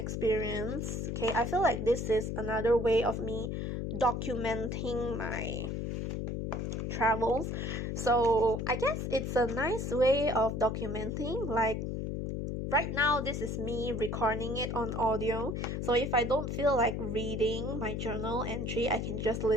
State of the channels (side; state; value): left; noise; hum, 2 dB below the sound